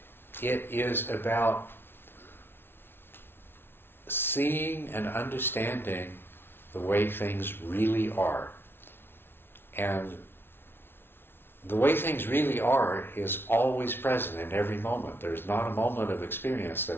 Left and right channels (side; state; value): right; late; 0.11 ms